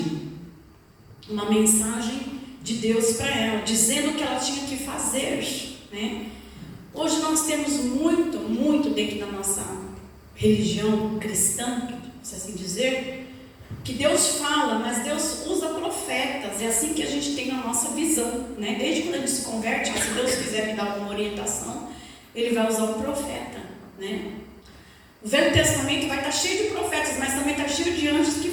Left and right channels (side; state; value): both; identical; correlation 1.00